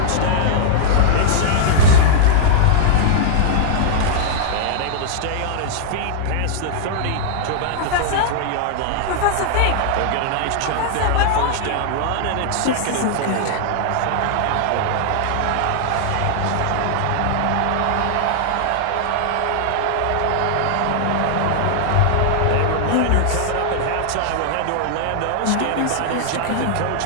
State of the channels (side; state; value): both; different; correlation -0.01